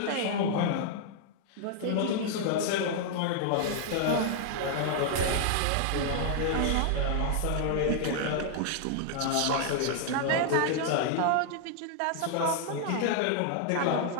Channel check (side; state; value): both; different; correlation -0.01